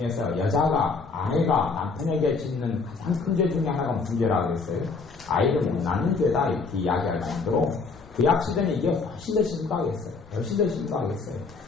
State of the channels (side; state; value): right; quieter; 4.5 dB